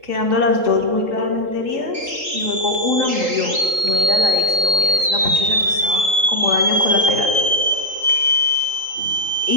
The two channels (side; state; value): left; late; 3.8 ms